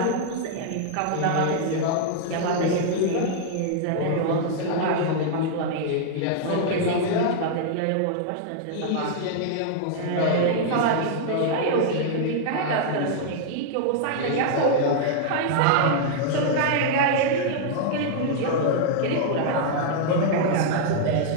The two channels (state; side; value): different; both; correlation -0.01